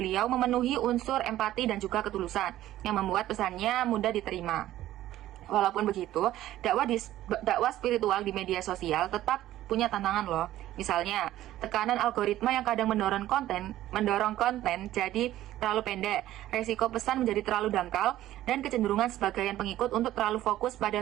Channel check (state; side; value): quieter; left; 14.0 dB